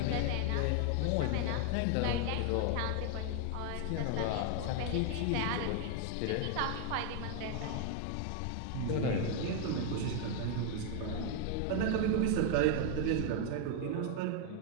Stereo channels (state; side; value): different; both; correlation 0.00